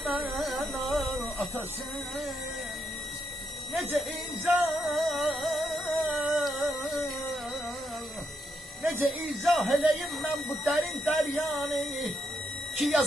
atasız. Nece izah eleyim ben bu derin deryanı ki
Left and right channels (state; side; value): normal; both; correlation 0.80